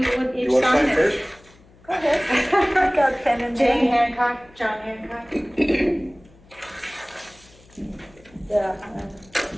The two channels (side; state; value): left; noise; hum, 27 dB below the sound